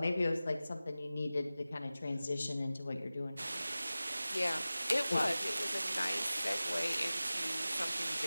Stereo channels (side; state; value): both; inverted; correlation -0.96